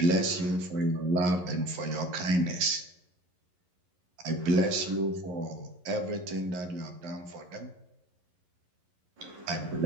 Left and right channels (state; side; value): late; left; 11 ms